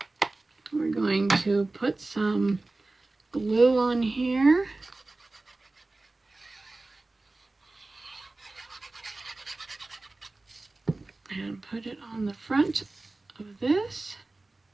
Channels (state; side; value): quieter; left; 3.1 dB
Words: We're going to put some glue on here. And put it on the front of this.